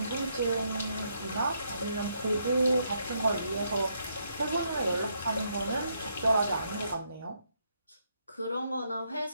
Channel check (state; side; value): inverted; both; correlation -0.76